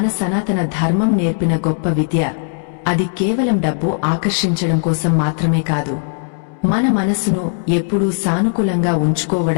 సనాతన ధర్మం నేర్పిన గొప్ప విద్య. అది కేవలం డబ్బు ఆకర్షించడం కోసం మాత్రమే కాదు, మన మనసును ఎప్పుడూ సానుకూలంగా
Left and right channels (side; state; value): right; silent; 68 dB below the other